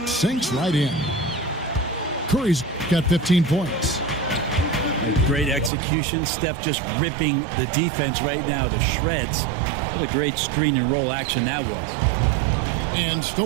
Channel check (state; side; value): drops out; left; at 5.7 s